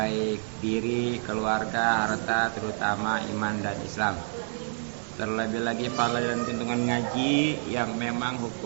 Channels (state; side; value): silent; left; digital silence